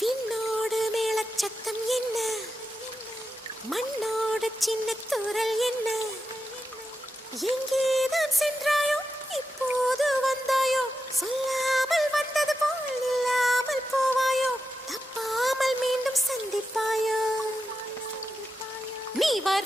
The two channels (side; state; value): both; normal; correlation 0.89